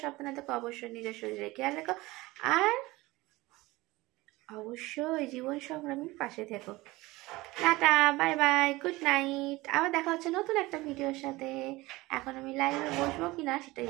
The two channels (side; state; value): left; quieter; 20.4 dB